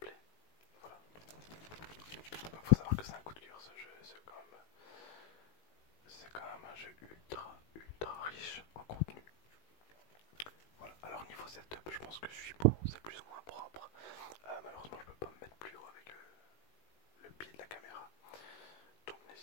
Voilà. Il faut savoir que c'est un coup de cœur ce jeu, c'est quand même un jeu ultra riche en contenu. Voilà, alors niveau setup, je pense que je suis bon, c'est plus ou moins propre. Malheureusement, je peux pas me mettre plus haut avec le pied de la caméra. Donc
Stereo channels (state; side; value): late; right; 19 ms